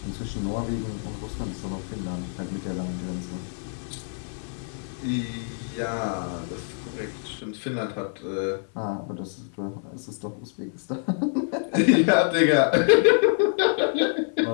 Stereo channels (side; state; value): right; silent; digital silence